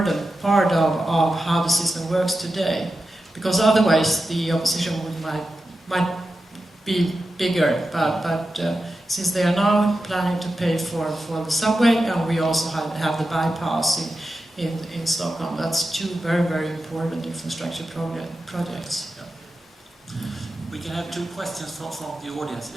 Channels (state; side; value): normal; both; correlation 0.91